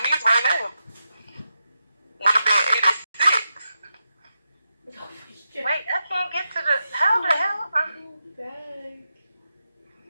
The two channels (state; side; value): inverted; both; correlation -0.88